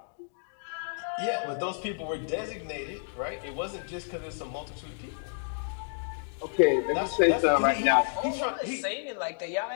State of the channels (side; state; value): right; silent; digital silence